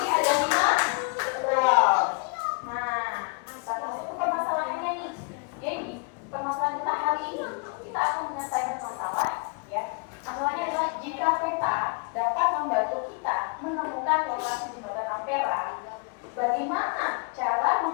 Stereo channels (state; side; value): quieter; right; 34.0 dB